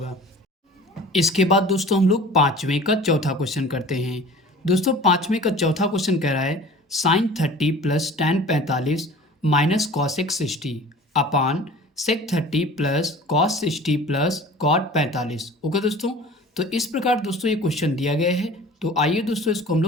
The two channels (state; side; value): normal; both; correlation 0.43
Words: इसके बाद दोस्तों हम लोग पाँचवें का चौथा क्वेश्चन करते हैं। दोस्तों पाँचवें का चौथा क्वेश्चन कह रहा है sine 30 plus tan 45 minus cos x 60 upon sec 30 plus cos 60 plus cot 45। Okay दोस्तों, तो इस प्रकार दोस्तों ये क्वेश्चन दिया गया है। तो आइए दोस्तों इसको हम